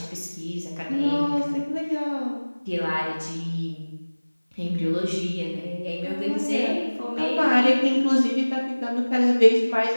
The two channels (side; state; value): both; inverted; correlation -1.00